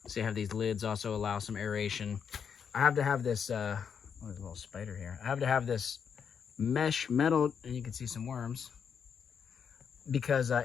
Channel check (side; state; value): right; quieter; 7.1 dB